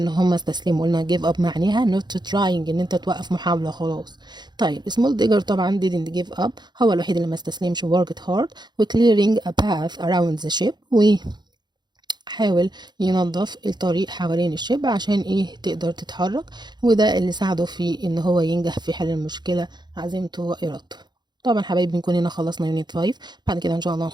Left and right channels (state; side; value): late; left; 0.21 ms